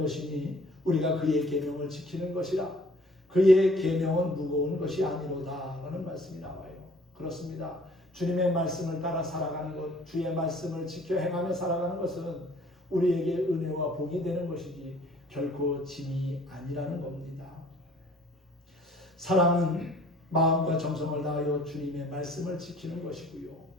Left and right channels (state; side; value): normal; both; correlation 0.55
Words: 우리가 그의 계명을 지키는 것이라. 그의 계명은 무거운 것이 아니로다 라는 말씀이 나와요. 그렇습니다. 주님의 말씀을 따라 살아가는 것, 주의 말씀을 지켜 행하며 살아가는 것은 우리에게 은혜와 복이 되는 것이지 결코 짐이 아니라는 겁니다. 사랑은 마음과 정성을 다하여 주님의 말씀을 지키는 것이고요.